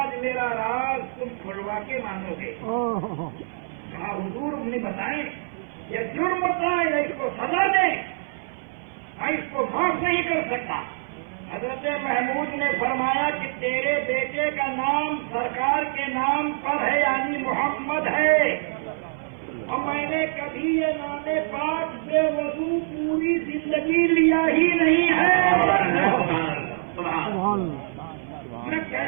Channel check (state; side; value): silent; left; 57 dB below the other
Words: میرا راز تم کھلوا کے مانو گے۔ کہا حضور نے بتائیں یہ جرم بتائیں یا اس کو سزا دیں، میں اس کو معاف نہیں کر سکتا۔ حضرت محمود نے فرمایا کہ تیرے بیٹے کا نام سرکار کے نام پر ہے، یعنی محمد ہے، اور میں نے کبھی یہ نام پاک بے وضو پوری زندگی لیا ہی نہیں ہے۔ میں